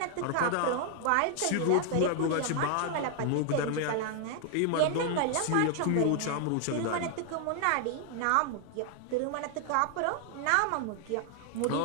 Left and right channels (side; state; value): both; different; correlation 0.00